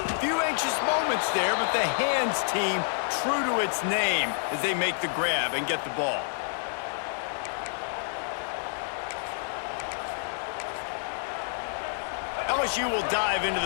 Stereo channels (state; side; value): silent; right; digital silence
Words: few anxious moments there, but the hands team true to its name as they make the grab and get the ball. LSU will dive into